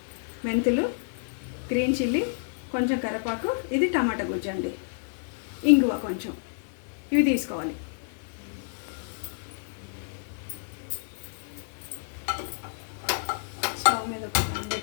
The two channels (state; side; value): silent; right; digital silence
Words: మెంతులు, గ్రీన్ చిల్లీ, కొంచెం కరివేపాకు, ఇది టమాటా గుజ్జు అండి, ఇంగువ కొంచెం. ఇవి తీసుకోవాలి. స్టవ్ మీద ఒక ప్యాన్